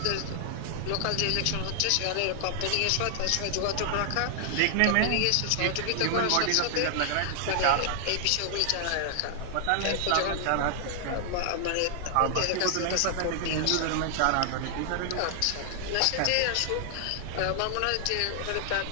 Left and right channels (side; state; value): both; different; correlation 0.00